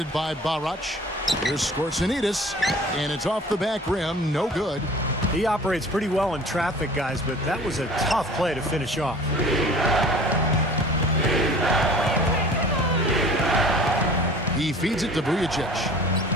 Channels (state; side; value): normal; both; correlation 0.45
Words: by Barac. Here's Skortsonidis, and it's off the back rim, no good. He operates pretty well in traffic, guys, but that was a tough play to finish off. He feeds it to Vujacic.